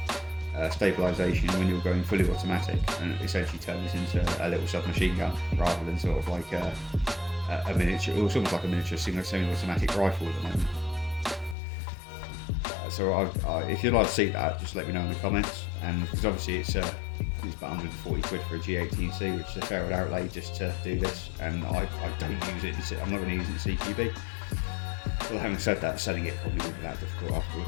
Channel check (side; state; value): right; drops out; at 11.6 s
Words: stabilisation when you're going fully automatic, and it essentially turns into a little submachine gun rather than sort of like a miniature, or almost like a miniature semi-automatic rifle at the moment. So if you'd like to see that, just let me know in the comments, and because obviously it's about 140 quid for a G18C, which is a fair outlay just to do this, and I don't use it. I'm not going to use it in CQB. Well, having said that, selling it probably wouldn't be that difficult